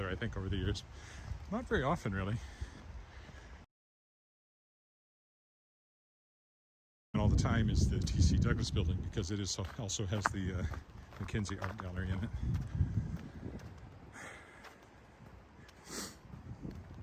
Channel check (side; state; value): both; identical; correlation 1.00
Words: I think, over the years. Not very often, really. And all the time is the T.C. Douglas Building, because it is also has the Mackenzie Art Gallery in it.